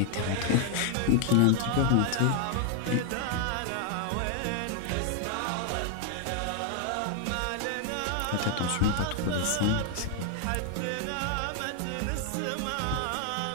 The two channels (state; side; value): different; both; correlation 0.00